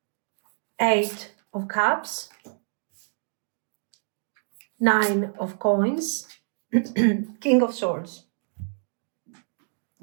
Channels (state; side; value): silent; left; digital silence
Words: Eight of Cups. Nine of Coins. King of Swords.